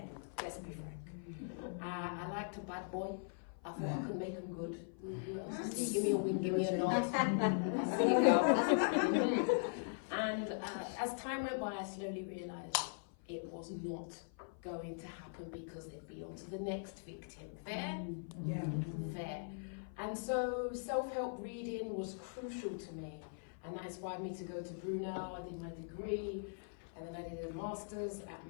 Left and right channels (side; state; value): right; silent; 51 dB below the other